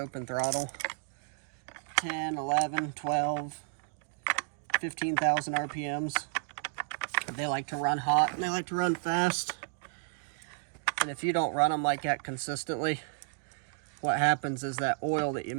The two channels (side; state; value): left; silent; 56 dB below the other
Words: throttle, 10, 11, 12, 15,000 RPMs. They like to run hot and they like to run fast. And if you don't run them like that consistently, what happens is that oil that you